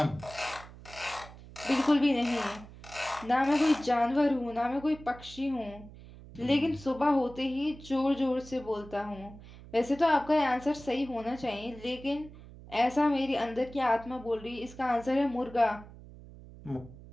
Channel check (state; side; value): noise; right; hum, 18 dB below the sound